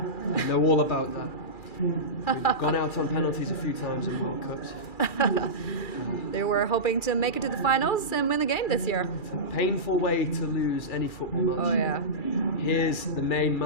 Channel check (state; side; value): late; right; 2.4 ms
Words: I know all about that. We've gone out on penalties a few times in World Cups. They were hoping to make it to the finals and win the game this year. Painful way to lose any football match. Oh yeah. Here's the main